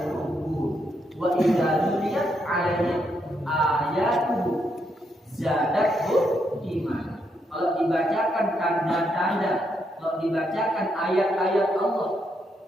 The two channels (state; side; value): normal; both; correlation 0.78